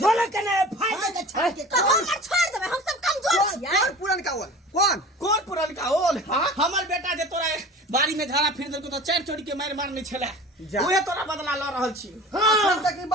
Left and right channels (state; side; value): normal; both; correlation 0.39